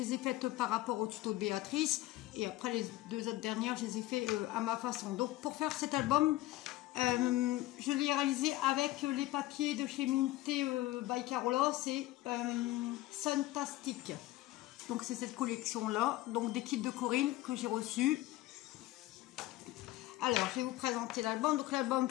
ai faites par rapport au tuto de Béatrice, et après les deux autres dernières, je les ai fait à ma façon. Donc pour faire cet album, je l'ai réalisé avec les papiers de chez Minté by Carola, c'est Suntastic. Donc c'est cette collection-là, donc des kits de Corinne que j'ai reçus. Alors, je vais vous présenter l'album. Donc l'album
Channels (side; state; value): right; quieter; 16.9 dB